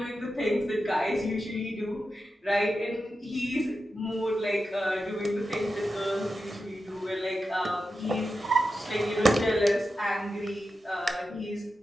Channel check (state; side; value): normal; both; correlation 0.90